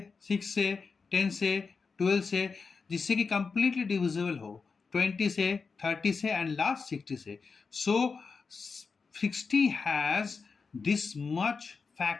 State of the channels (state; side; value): quieter; right; 4.9 dB